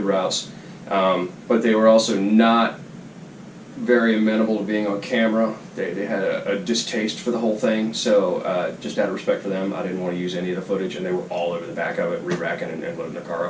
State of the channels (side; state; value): both; identical; correlation 1.00